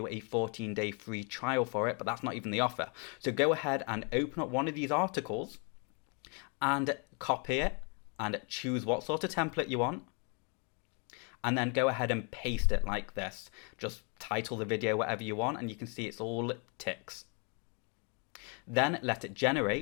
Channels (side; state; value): right; quieter; 35.9 dB